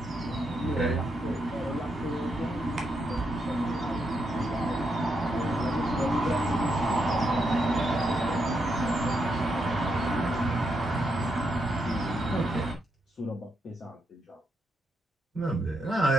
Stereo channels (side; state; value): both; normal; correlation 0.81